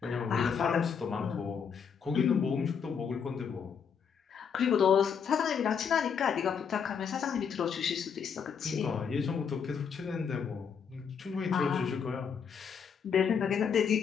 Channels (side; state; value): right; quieter; 6.8 dB